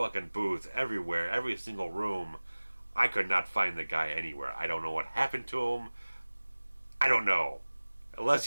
booth, everywhere, every single room. I could not find the guy anywhere. I don't know what happened to him. I don't know. Unless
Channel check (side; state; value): both; inverted; correlation -1.00